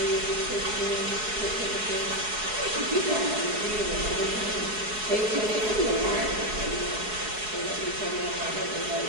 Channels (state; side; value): late; left; 4.7 ms